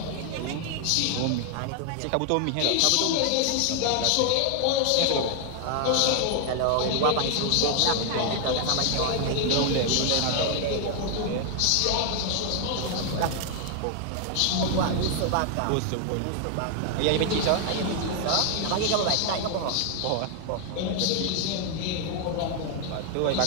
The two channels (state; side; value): different; both; correlation 0.00